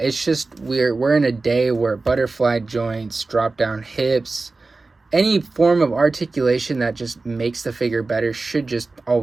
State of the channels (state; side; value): quieter; left; 3.6 dB